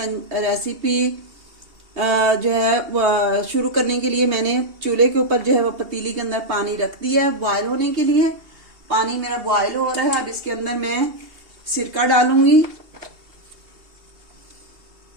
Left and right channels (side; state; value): left; late; 2.7 ms